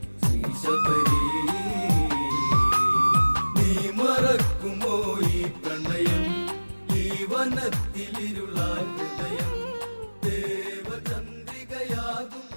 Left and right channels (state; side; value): inverted; both; correlation -1.00